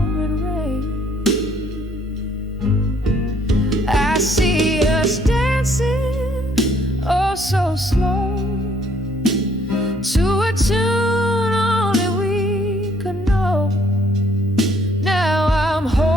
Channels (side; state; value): both; normal; correlation 0.65